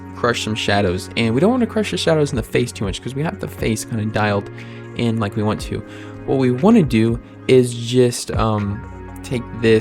crush some shadows. And we don't want to crush the shadows in the face too much because we have the face kind of dialed in like we want to. What we want to do is just take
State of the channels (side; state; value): both; identical; correlation 1.00